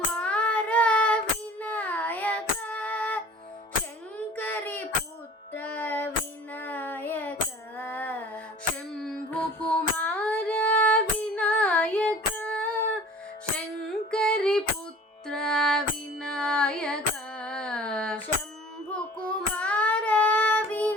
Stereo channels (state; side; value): normal; both; correlation 0.46